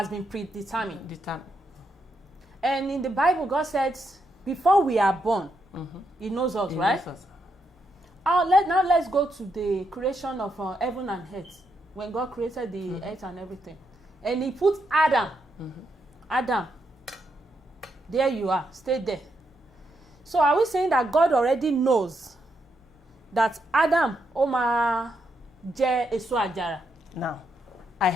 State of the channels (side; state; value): both; normal; correlation 0.80